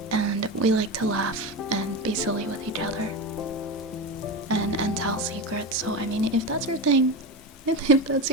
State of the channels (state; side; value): normal; both; correlation 0.20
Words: and we like to laugh and be silly with each other, and tell secrets. So I mean, if that's your thing, if that's